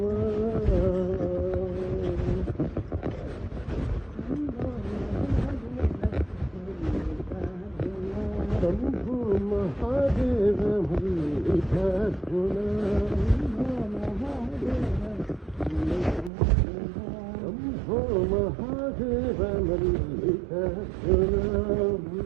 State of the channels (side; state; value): left; drops out; at 16.3 s